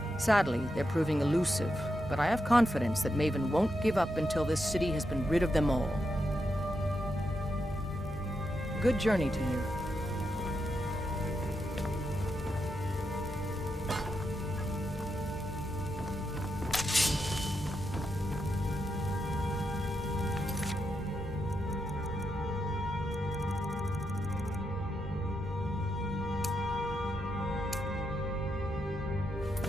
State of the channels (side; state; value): both; normal; correlation 0.84